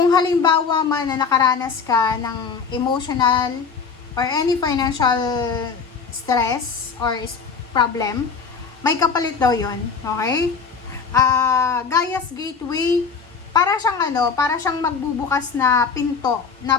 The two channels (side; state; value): right; quieter; 5.6 dB